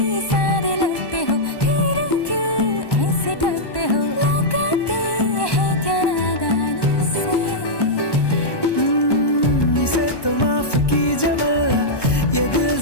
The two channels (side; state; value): right; late; 1.1 ms